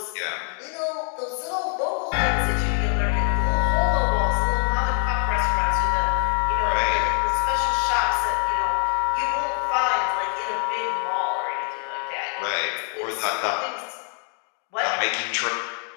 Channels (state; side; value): quieter; right; 39.4 dB